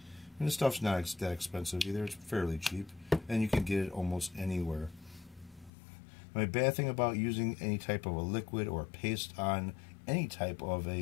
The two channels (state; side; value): drops out; right; at 5.7 s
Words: And this stuff's not that expensive either. It's fairly cheap, and you can get it almost anywhere. My bad thing about using any type of a liquid or a paste on any type of